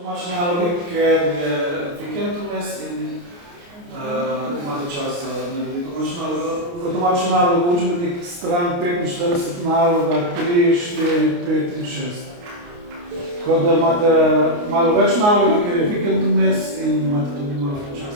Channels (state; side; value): late; left; 29 ms